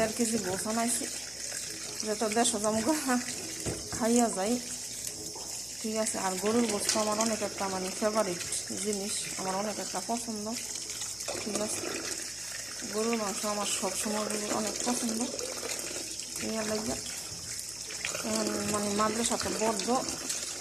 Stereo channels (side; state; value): left; noise; hum, 22 dB below the sound